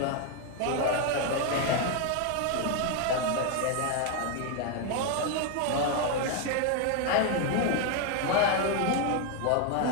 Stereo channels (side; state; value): both; different; correlation 0.01